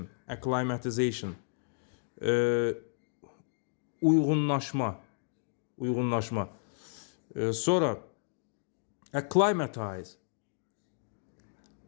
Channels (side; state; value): right; silent; digital silence